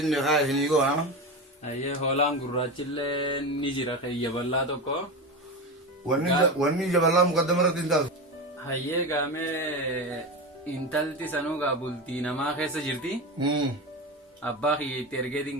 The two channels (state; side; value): normal; both; correlation 0.21